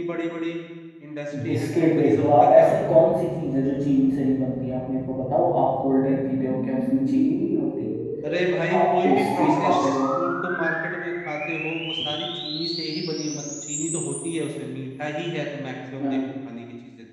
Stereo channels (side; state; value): both; identical; correlation 1.00